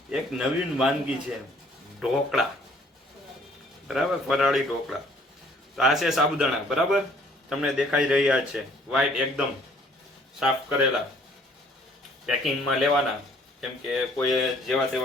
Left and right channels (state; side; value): normal; both; correlation 0.59